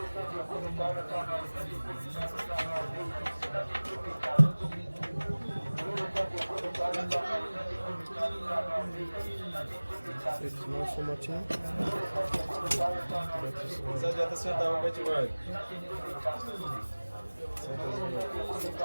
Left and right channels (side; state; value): both; inverted; correlation -1.00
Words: It's not so much in. Você adianta sentar um pouquinho mais.